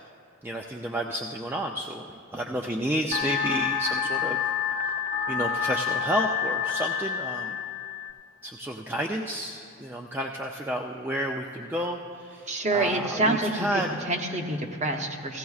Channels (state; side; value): normal; both; correlation 0.32